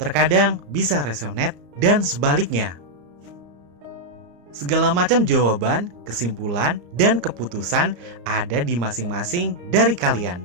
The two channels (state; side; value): late; left; 34 ms